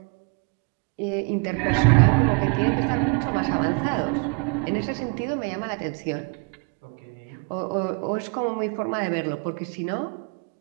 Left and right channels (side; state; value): left; quieter; 34.0 dB